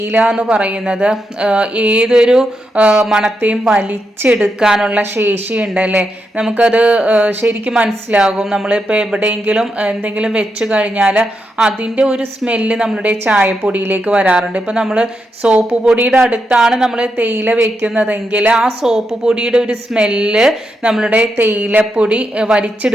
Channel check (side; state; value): both; normal; correlation 0.84